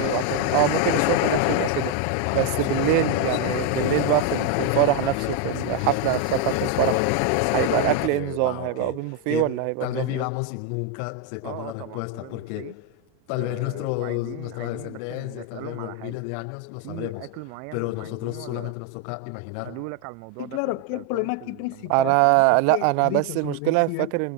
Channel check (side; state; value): both; different; correlation 0.02